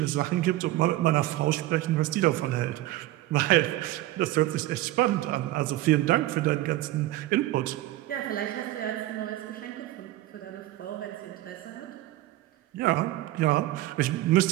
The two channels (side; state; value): left; quieter; 15.9 dB